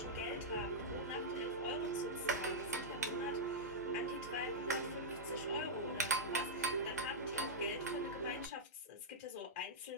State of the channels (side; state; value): both; normal; correlation -0.07